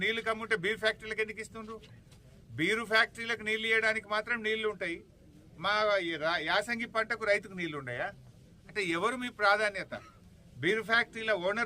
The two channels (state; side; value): identical; both; correlation 1.00